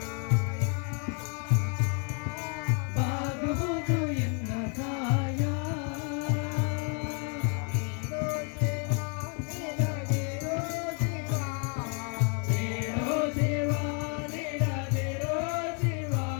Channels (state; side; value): quieter; right; 38.2 dB